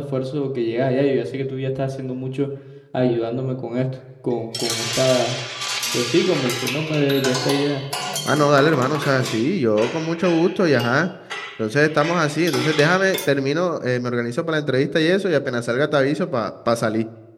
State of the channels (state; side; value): identical; both; correlation 1.00